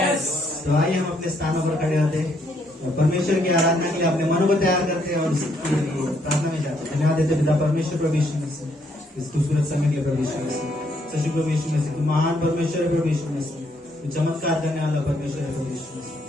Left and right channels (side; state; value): both; normal; correlation 0.71